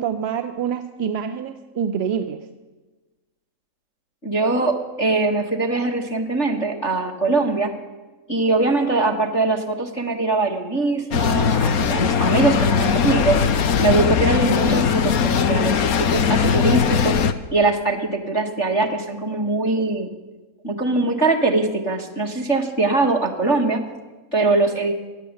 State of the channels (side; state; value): right; late; 4.3 ms